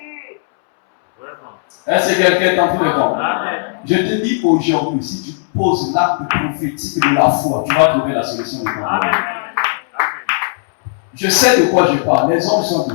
Vraiment. Est-ce que quelqu'un est en train de comprendre? Amen. Je te dis aujourd'hui, si tu poses l'acte prophétique de la foi, tu vas trouver la solution de ton Amen. problème. Amen. Je sais de quoi je parle. Les anges sont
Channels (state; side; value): silent; right; 66 dB below the other